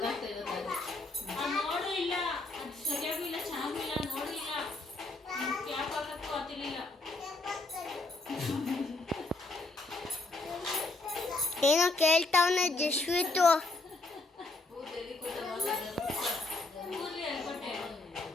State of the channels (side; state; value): right; quieter; 3.2 dB